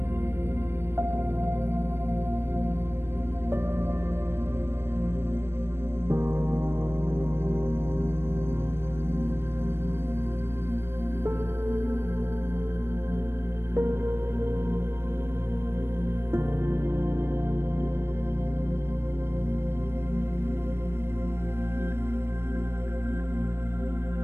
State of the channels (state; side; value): late; left; 0.12 ms